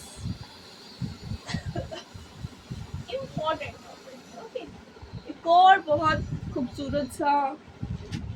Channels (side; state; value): both; identical; correlation 1.00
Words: important topic. Okay, एक और बहुत खूबसूरत सा